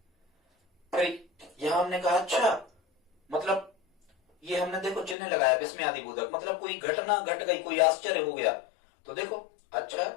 फिर यहां हमने कहा अच्छा मतलब ये हमने देखो चिन्ह लगाया विस्मय आदि बोधक, मतलब कोई घटना घट गई, कोई आश्चर्य हो गया। तो देखो अच्छा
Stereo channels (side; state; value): right; drops out; at 5.2 s